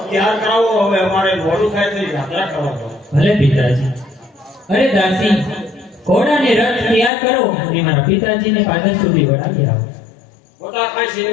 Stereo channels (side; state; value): right; drops out; at 7.1 s